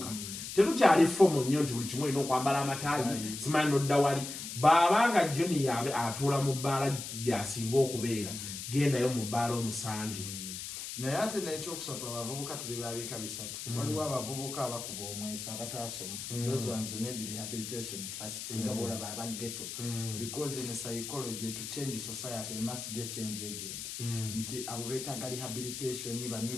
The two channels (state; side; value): noise; left; hiss, 7 dB below the sound